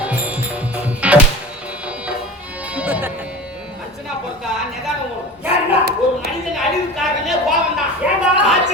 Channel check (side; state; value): both; normal; correlation 0.35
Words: ஒரு மனிதன் அழிவு காரணமே கோபம் தான்.